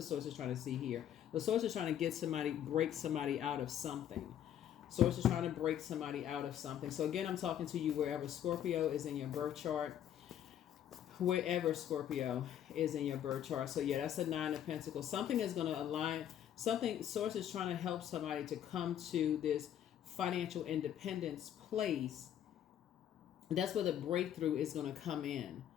Source is trying to see here. The Source is trying to break somebody out of something. Source is trying to break somebody out of something. So again, I'm talking to you wherever Scorpio is in your birth chart. Wherever Scorpio is in your birth chart. So yeah, that's a Nine of Pentacles. Something is going to align. Source is trying to help somebody to come to this financial independence place. That's where the breakthrough is going to come in.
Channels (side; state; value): right; quieter; 10.3 dB